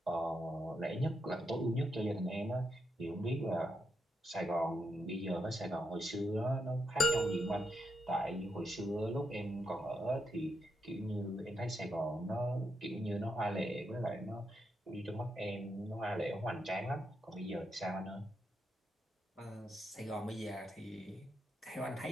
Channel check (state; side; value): normal; both; correlation 0.83